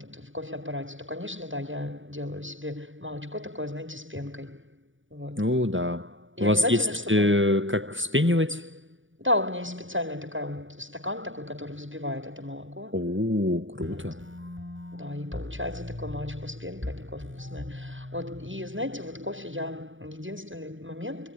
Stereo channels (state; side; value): late; left; 0.57 ms